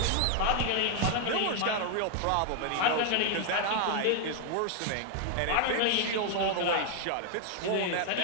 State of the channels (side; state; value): both; different; correlation 0.00